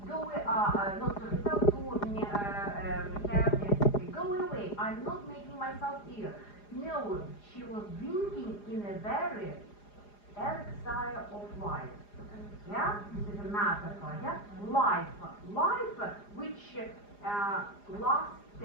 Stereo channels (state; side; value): late; right; 4.9 ms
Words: Not to herself, to her sister. Go away. I'm not making myself ill. No, she was drinking in a very elixir of life. Yeah, this is a metaphor. Yeah, life, which